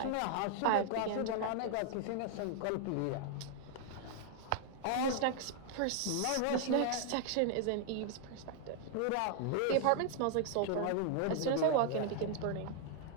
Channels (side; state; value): both; different; correlation 0.00